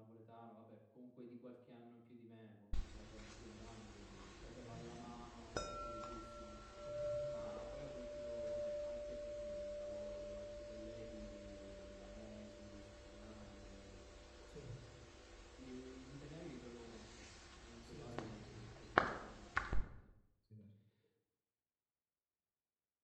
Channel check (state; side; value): identical; both; correlation 1.00